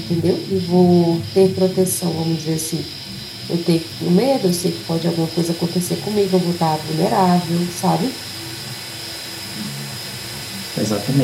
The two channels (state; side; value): identical; both; correlation 1.00